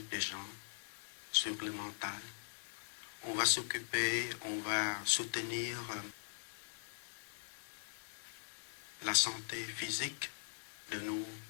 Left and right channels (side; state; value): right; silent; 50 dB below the other